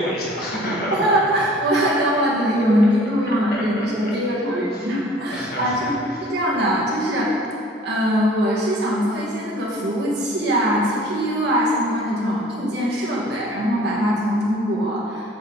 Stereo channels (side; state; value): both; normal; correlation 0.50